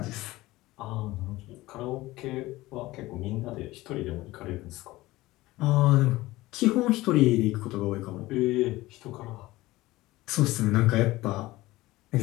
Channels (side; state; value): right; quieter; 18.5 dB